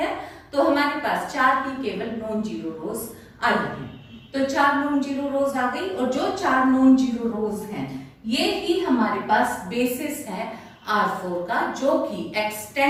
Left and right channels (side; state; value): both; identical; correlation 1.00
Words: तो हमारे पास 4 ही केवल नॉन जीरो रोज आएगी. तो 4 नॉन जीरो रोज आ गई, और जो 4 नॉन जीरो रोज हैं ये ही हमारे पास बेसिस है R4 का, जो कि